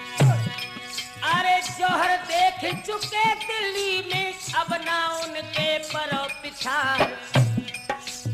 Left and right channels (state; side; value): identical; both; correlation 1.00